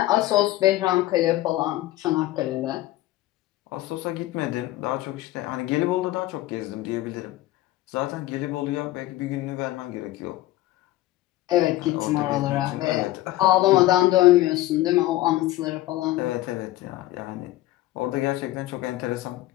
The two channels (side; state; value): right; quieter; 16.1 dB